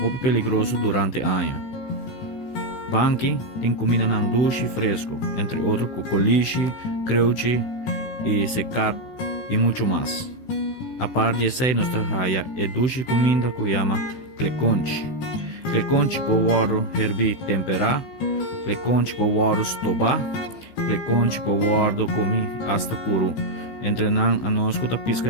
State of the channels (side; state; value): right; late; 16 ms